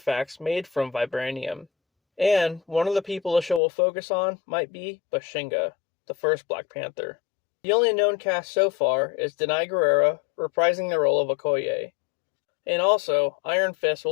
made from vibranium. And one of the people the show will focus on might be Bashinga, the first Black Panther. The only known cast so far is Denai Guerrera reprising the role of Okoye. And also, Iron Fist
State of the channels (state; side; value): drops out; right; at 3.6 s